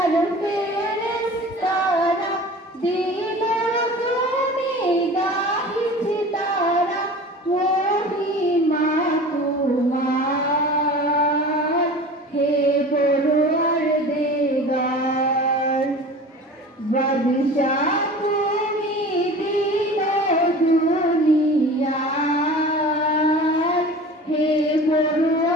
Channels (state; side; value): normal; both; correlation 0.38